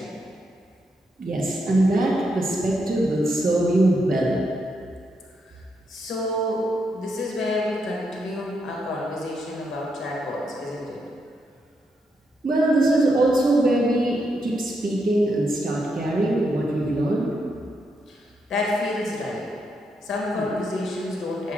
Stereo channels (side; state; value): both; normal; correlation 0.81